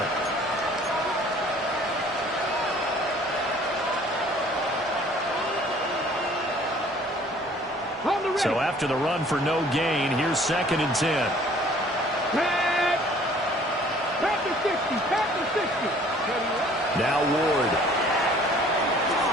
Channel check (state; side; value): normal; both; correlation 0.54